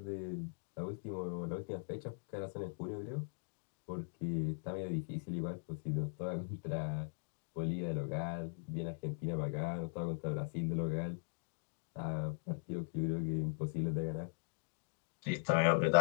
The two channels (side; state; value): right; silent; digital silence